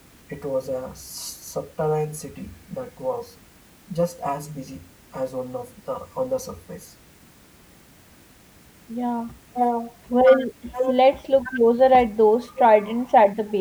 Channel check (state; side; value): identical; both; correlation 1.00